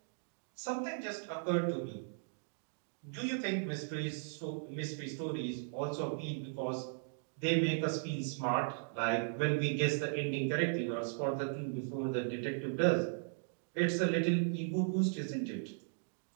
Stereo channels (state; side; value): silent; left; digital silence